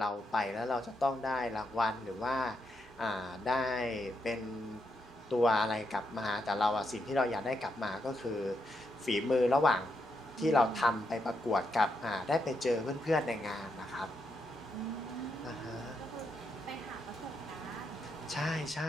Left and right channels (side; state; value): both; normal; correlation 0.81